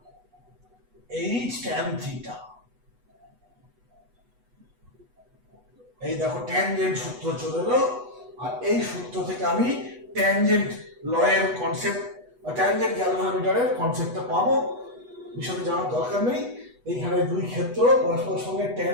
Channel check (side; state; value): left; late; 8.2 ms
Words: এইচ tan থিটা। এই দেখো ট্যানজেন্ট সূত্র চলে এলো, আর এই সূত্র থেকে আমি ট্যানজেন্ট লয়ের কনসেপ্ট বা ট্যানজেন্ট গ্যালভানোমিটারের কনসেপ্টটা পাবো। বিষয়টা জানার দরকার নেই। এইখানে দুই ক্ষেত্র পরস্পরের সঙ্গে